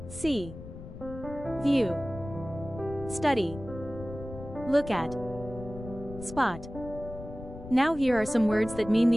See. View. Study. Look at. Spot. Now here are some words that mean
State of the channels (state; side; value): noise; left; rumble, 12 dB below the sound